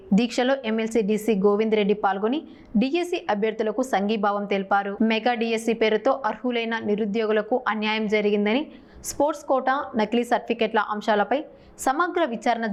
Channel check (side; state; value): both; identical; correlation 1.00